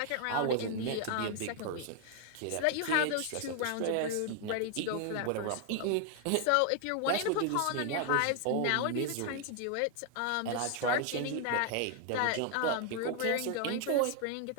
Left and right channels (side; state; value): both; different; correlation 0.00